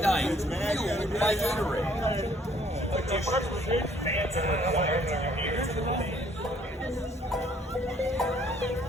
night fueled by Gatorade.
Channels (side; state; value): both; normal; correlation 0.62